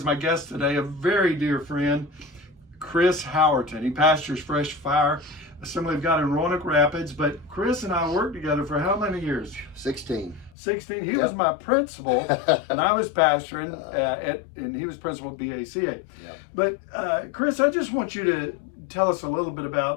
my guest today a very dear friend, Chris Howerton. He pastors Fresh Fire Assembly of God in Roanoke Rapids, but Chris and I worked together for how many years? 16. 16. He was my principal, and I was pastoring, and he was principal at BACA. Yep. But Chris, I just want you to tell us a little bit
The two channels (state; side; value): drops out; right; at 10.5 s